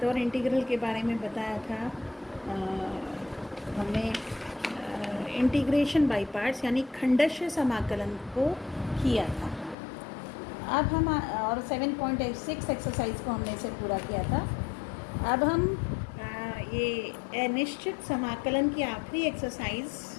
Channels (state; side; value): drops out; right; at 9.8 s